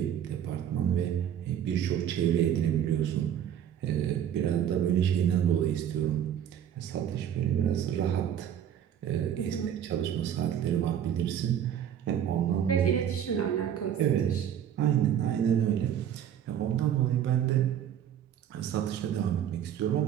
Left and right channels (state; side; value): quieter; left; 9.7 dB